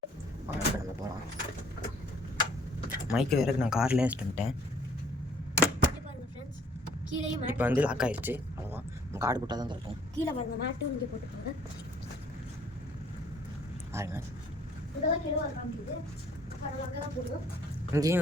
இப்போ நம்ம போகலாம். மைக்கு வேறு நான் கார்லேயே வச்சுட்டேன். இப்போ வந்து லாக் ஆயிடுச்சு. அவ்வளோதான், நம்ம கார்டு போட்டால் தான் கிடைக்கும். கீழே பாருங்க, மேட்டும் இங்கே போட்டுக்கோங்க. பாருங்க, போடுவோம். இங்கேயும்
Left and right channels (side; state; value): both; normal; correlation 0.60